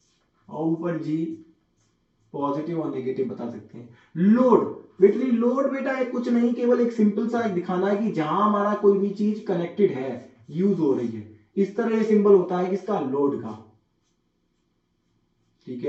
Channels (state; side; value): identical; both; correlation 1.00